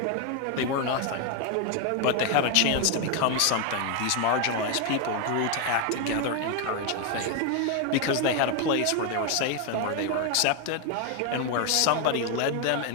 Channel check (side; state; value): both; different; correlation 0.01